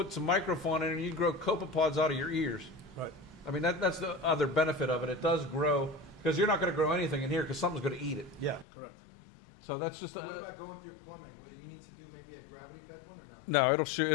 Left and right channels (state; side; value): drops out; right; at 8.7 s